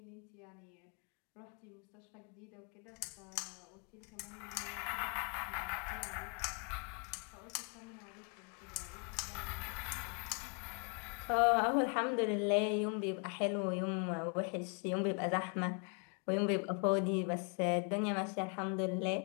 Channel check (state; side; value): quieter; right; 39.0 dB